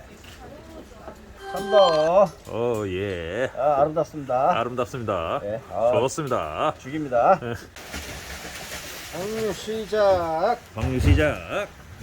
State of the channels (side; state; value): both; identical; correlation 1.00